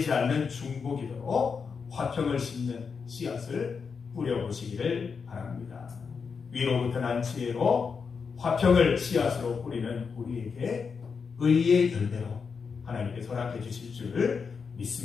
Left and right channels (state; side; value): quieter; right; 5.7 dB